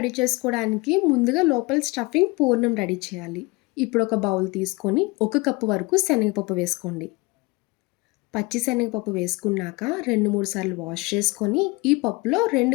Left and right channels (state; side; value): quieter; right; 24.8 dB